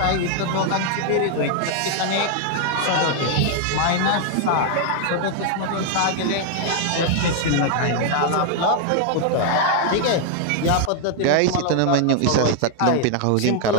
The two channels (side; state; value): both; different; correlation 0.00